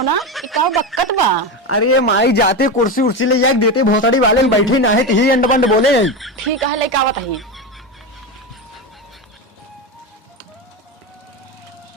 ना ये का बक्कत बा। अरे माई जाते कुर्सी उर्सी ले जाके देते भोसड़ी वाले बैठे ना है तो ही अंड बंड बोले। ठीक है लेके आवत ही।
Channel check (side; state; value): both; normal; correlation 0.17